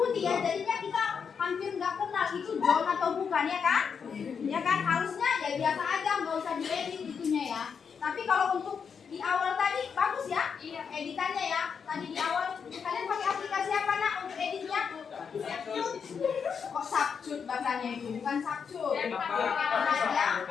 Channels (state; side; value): quieter; right; 6.5 dB